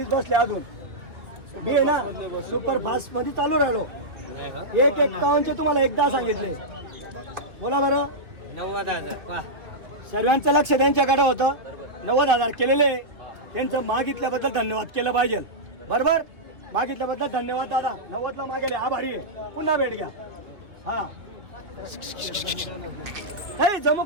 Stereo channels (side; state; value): left; late; 2.3 ms